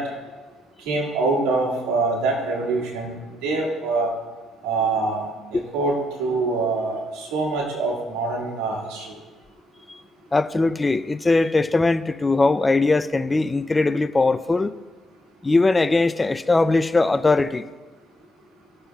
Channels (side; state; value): both; normal; correlation 0.79